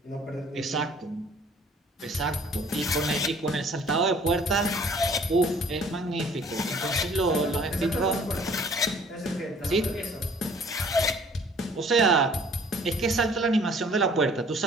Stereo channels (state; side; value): normal; both; correlation 0.54